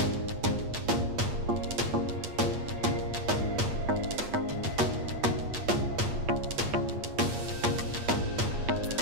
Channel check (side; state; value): left; late; 8.4 ms